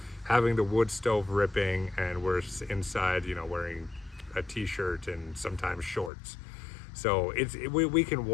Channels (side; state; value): right; drops out; at 6.1 s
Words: having the wood stove ripping, and we're inside, wearing a t-shirt and sometimes shorts. So we can